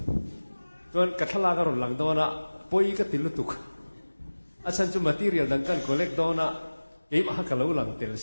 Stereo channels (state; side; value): inverted; both; correlation -1.00